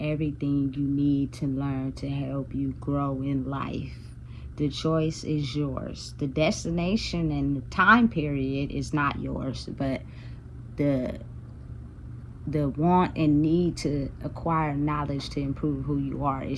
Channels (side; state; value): both; identical; correlation 1.00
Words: everything you need to learn to help you grow in life. The choice is yours. The destination and the time period is not yours, but the want and need to acquire knowledge to improve who you are